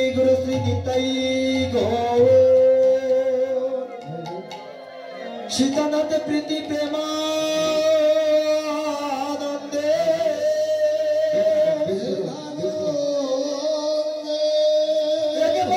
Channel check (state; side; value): identical; both; correlation 1.00